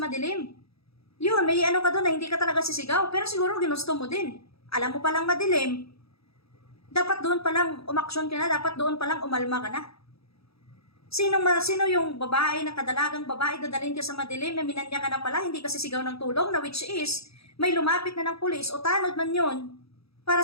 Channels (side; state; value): right; late; 0.77 ms